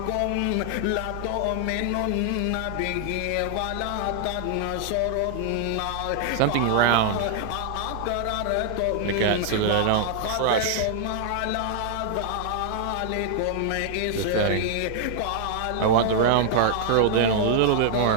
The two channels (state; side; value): different; both; correlation 0.00